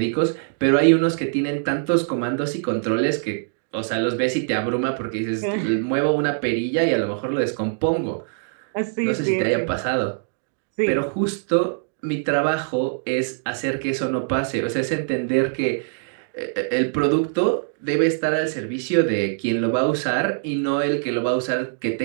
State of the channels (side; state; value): left; silent; digital silence